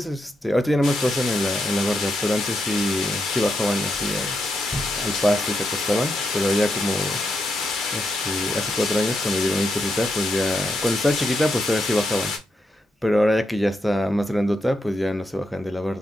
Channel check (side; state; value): both; normal; correlation 0.83